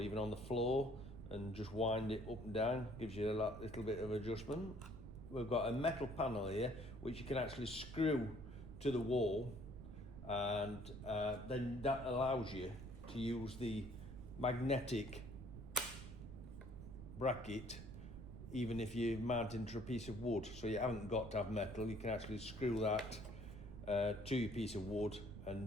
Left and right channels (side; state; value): right; noise; rumble, 11 dB below the sound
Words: on the floor and just wind it up and down. Gives you a little bit of adjustment. We've got a metal panel here which you can actually screw to the wall, and then that allows you to use the magnetic bracket even if you're mounting to a piece of wood. So you haven't got to have metal, you can actually screw that to your piece of wood